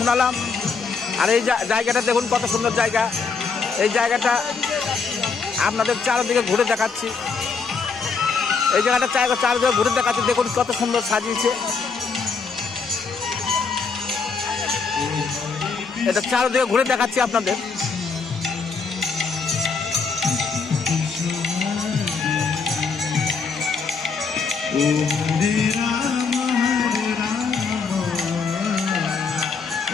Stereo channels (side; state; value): right; quieter; 5.1 dB